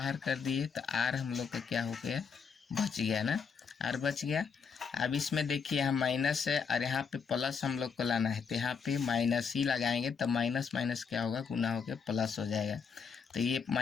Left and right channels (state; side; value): quieter; right; 6.0 dB